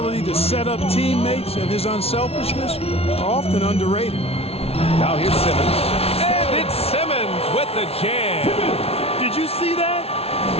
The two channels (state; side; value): late; right; 0.29 ms